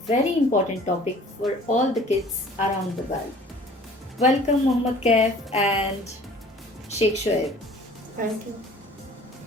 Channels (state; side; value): normal; both; correlation 0.49